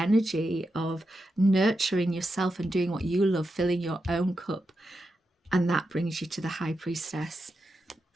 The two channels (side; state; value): both; normal; correlation 0.87